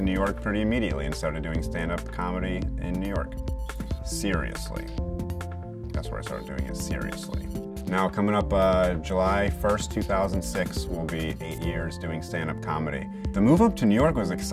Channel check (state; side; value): identical; both; correlation 1.00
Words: New York pretty immediately and started doing stand-up comedy in New York. Seriously. That's where I started doing it, seriously. Now coming up July 1st, 2006 will be 8 years doing stand-up comedy. The move up to New York was